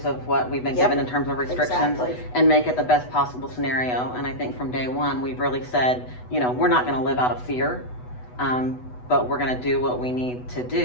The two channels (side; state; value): right; late; 8.1 ms